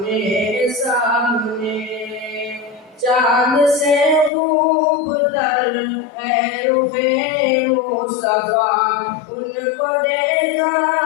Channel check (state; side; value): drops out; right; at 4.3 s